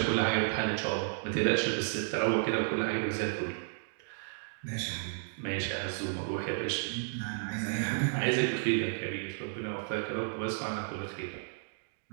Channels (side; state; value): left; silent; digital silence